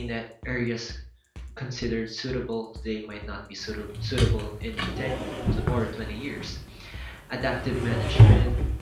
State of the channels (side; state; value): both; identical; correlation 1.00